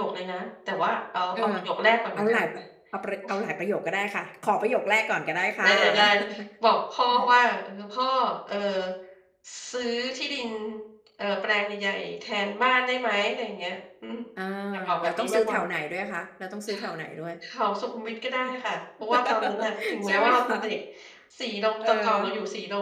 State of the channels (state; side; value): identical; both; correlation 1.00